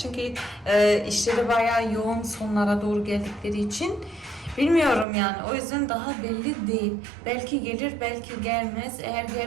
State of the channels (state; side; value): drops out; left; at 5.1 s